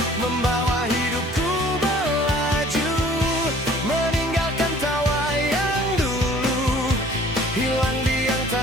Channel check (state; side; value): normal; both; correlation 0.52